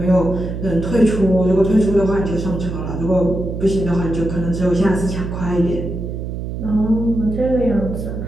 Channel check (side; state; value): right; noise; hum, 6 dB below the sound